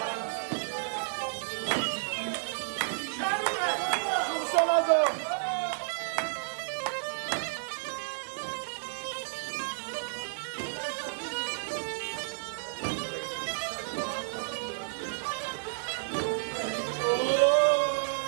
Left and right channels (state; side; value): silent; left; digital silence